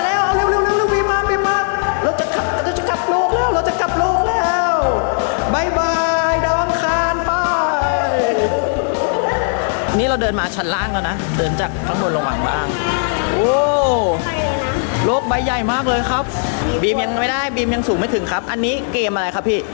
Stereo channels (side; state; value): right; silent; 68 dB below the other